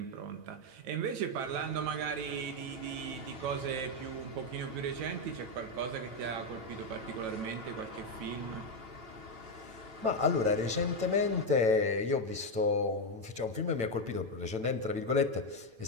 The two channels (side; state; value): left; late; 9.0 ms